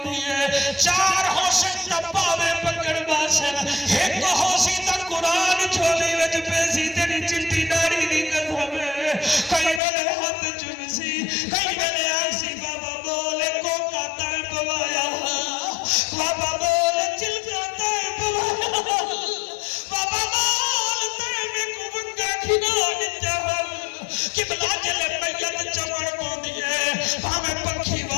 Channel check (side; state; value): right; drops out; at 9.8 s